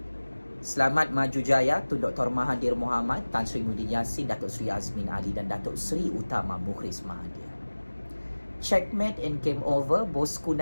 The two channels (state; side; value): inverted; both; correlation -1.00